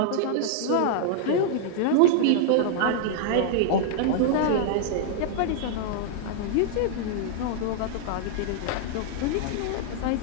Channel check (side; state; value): both; different; correlation -0.01